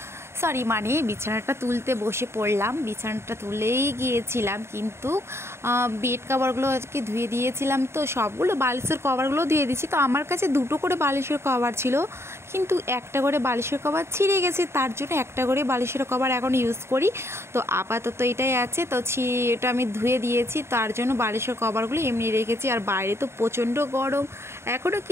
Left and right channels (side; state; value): left; late; 0.12 ms